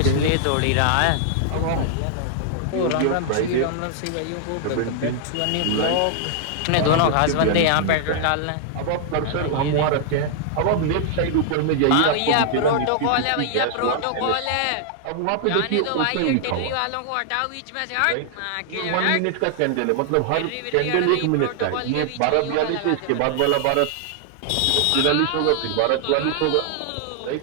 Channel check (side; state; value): both; different; correlation -0.01